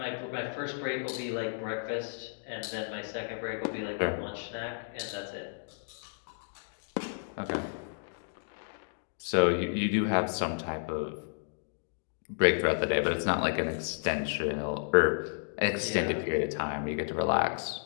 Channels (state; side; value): silent; right; digital silence